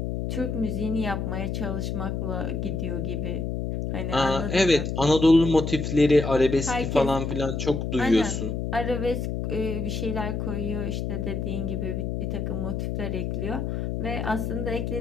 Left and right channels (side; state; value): left; noise; hum, 2 dB below the sound